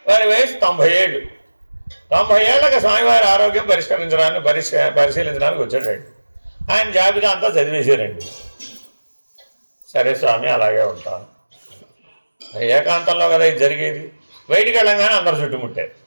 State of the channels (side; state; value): both; inverted; correlation -1.00